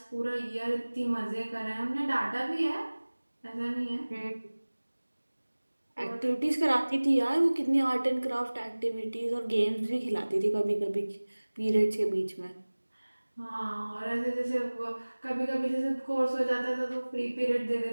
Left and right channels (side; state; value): both; inverted; correlation -1.00